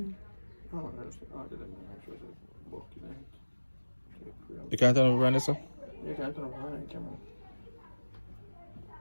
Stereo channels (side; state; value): both; inverted; correlation -1.00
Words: No, I just added them and make sure it's working out. You can't turn over on this, sir? You can't turn on the camera.